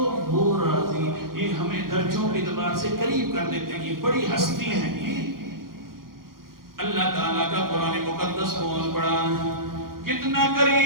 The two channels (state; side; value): late; left; 0.92 ms